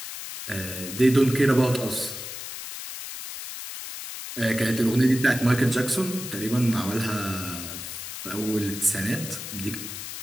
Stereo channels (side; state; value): left; noise; hiss, 9 dB below the sound